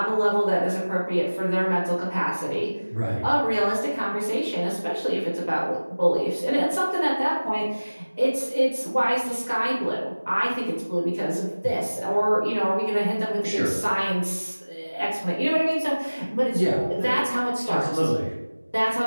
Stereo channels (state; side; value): inverted; both; correlation -1.00